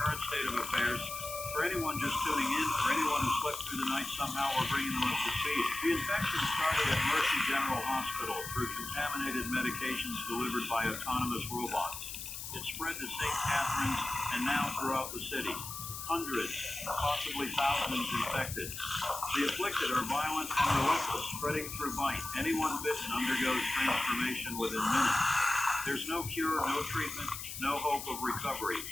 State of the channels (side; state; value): left; noise; hiss, 8 dB below the sound